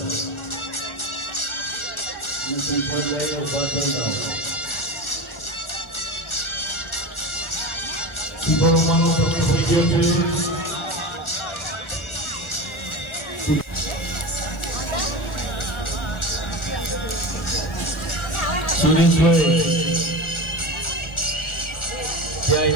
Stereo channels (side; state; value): right; late; 1.4 ms